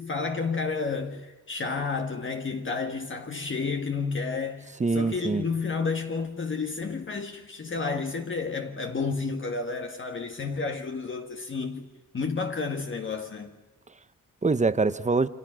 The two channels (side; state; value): both; normal; correlation 0.46